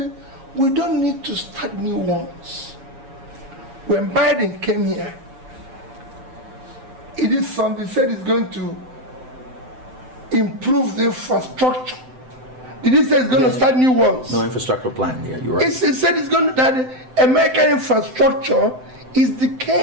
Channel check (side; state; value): left; late; 7.8 ms